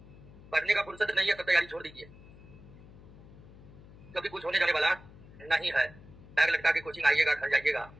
पढ़ने का फुर्सत नहीं है तो तैयारी छोड़ दीजिए, क्योंकि कुछ होने जाने वाला नहीं है। बैग लटका के कोचिंग आइएगा, घर जाइएगा,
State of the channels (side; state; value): left; noise; hum, 20 dB below the sound